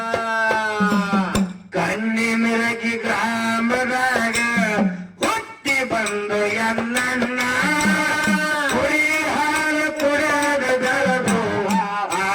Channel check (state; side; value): identical; both; correlation 1.00